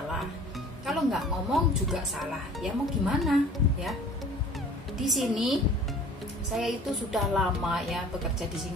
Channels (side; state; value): both; normal; correlation 0.47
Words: kalau nggak ngomong juga salah ya, mau gimana ya. Di sini saya itu sudah lama ya bekerja di